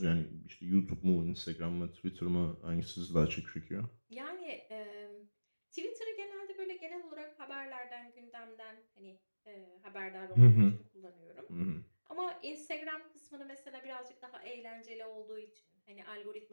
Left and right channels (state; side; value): inverted; both; correlation -1.00